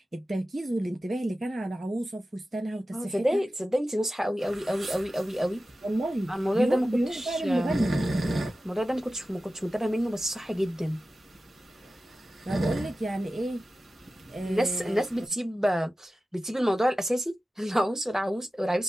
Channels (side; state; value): both; normal; correlation 0.94